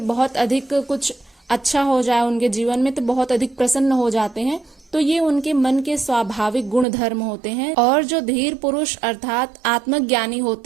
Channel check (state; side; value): drops out; left; at 6.9 s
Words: बहुत अधिक कुछ अच्छा हो जाए उनके जीवन में तो बहुत अधिक प्रसन्न हो जाते हैं। तो ये उनके मन के स्वाभाविक गुण धर्म होते हैं। और जो धीर पुरुष अर्थात आत्मज्ञानी